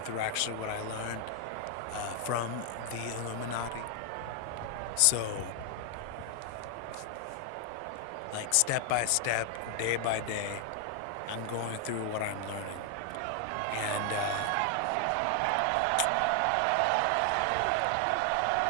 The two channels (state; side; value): different; both; correlation 0.00